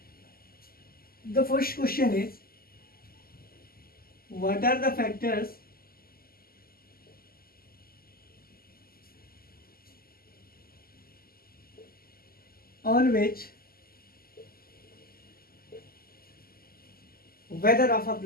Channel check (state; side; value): late; right; 0.43 ms